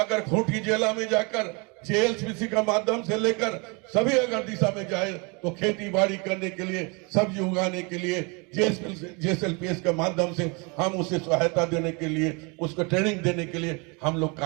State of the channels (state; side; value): quieter; left; 30.4 dB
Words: खूंटी जिला में जाकर जेएलपीसी का माध्यम से लेकर सभी अगर दिशा में जाए तो खेती बाड़ी करने के लिए, सब्जी उगाने के लिए जेएसएलपीएस के माध्यम से हम उसे सहायता देने के लिए, उसको ट्रेनिंग देने के लिए हम लोग